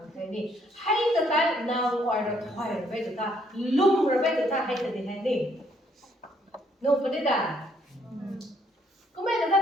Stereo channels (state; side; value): normal; both; correlation 0.68